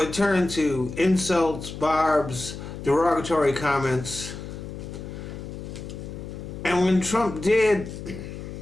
turned to insults, barbs, derogatory comments. And when Trump did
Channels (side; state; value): left; noise; hum, 10 dB below the sound